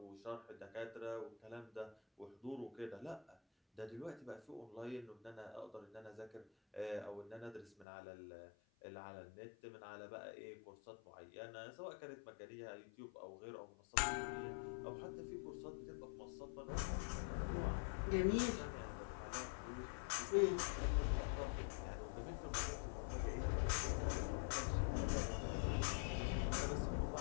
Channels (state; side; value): drops out; right; at 7.9 s